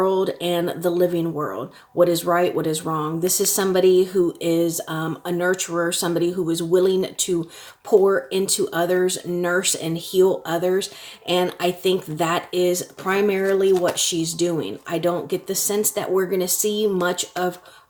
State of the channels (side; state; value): both; identical; correlation 1.00